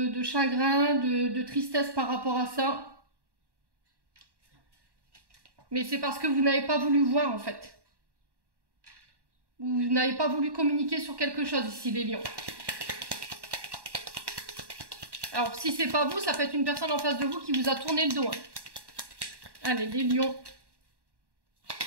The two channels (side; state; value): left; late; 1.1 ms